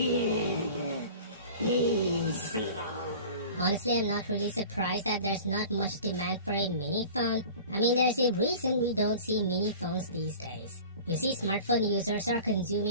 peace. Honestly, I'm not really surprised that there's not much demand for a mini phone. I mean, there's a reason we don't see mini phones these days. You see, smartphone users are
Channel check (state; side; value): inverted; both; correlation -0.40